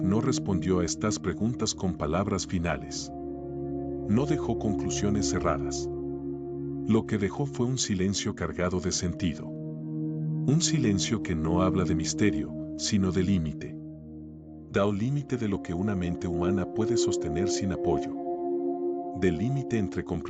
no respondió a estas preguntas con palabras finales. No dejó conclusiones cerradas. Lo que dejó fue un silencio cargado de sentido. Un silencio que no habla de misterio, sino de límite. Da un límite de lo que una mente humana puede sostener sin apoyo. Del límite entre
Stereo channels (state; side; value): identical; both; correlation 1.00